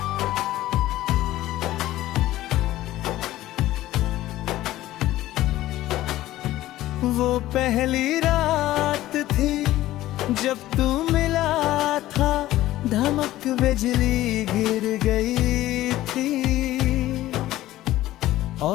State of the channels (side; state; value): right; quieter; 15.3 dB